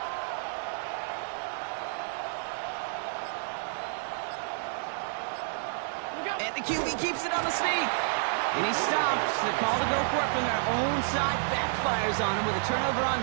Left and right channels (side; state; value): left; silent; digital silence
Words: And the QB keeps it on the sneak. And he stops. The call to go for it from their own side backfires on him with a turnover on